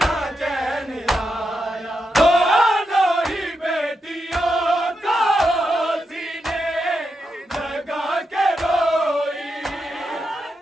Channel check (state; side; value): normal; both; correlation 0.85